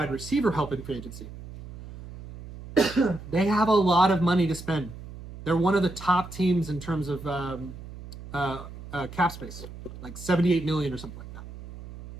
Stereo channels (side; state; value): right; noise; hum, 14 dB below the sound